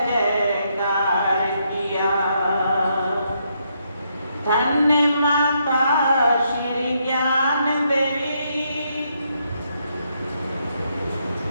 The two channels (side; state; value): both; inverted; correlation -0.77